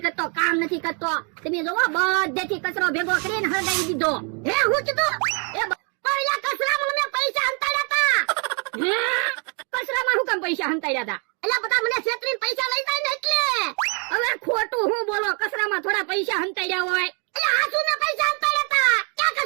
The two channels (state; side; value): quieter; left; 37.0 dB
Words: કરતો, કામ નથી કરતો. તમે જોવો બધેથી કચરો ભેગો કરીને હળગાવી દીધો. હે હું કીધું એ પહેલા કચરામાં મેં પૈસા હંતાડ્યા હતા. હે કચરામાં હું કામ પૈસા હંતાડ્યા હતા? એટલે બધા મને છેતરીને પૈસા લઈ જાય ને એટલે. હવે ખોટું હું બોલો, કચરામાં થોડા પૈસા હંતાડ્યા હોય. એટલે આસુ ને પૈસા હંતાડ્યા હતા, ક્યાં